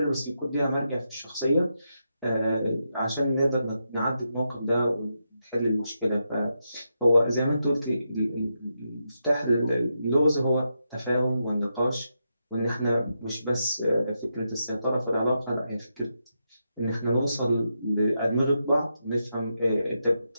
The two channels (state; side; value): inverted; both; correlation -0.84